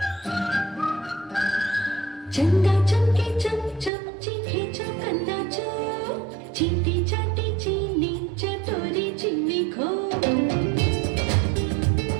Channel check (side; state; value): left; drops out; at 3.9 s